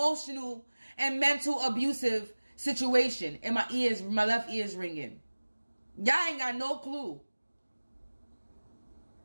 and mental abusive situation, and my left ear is ringing. Y'all ain't got no clue.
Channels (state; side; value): inverted; both; correlation -1.00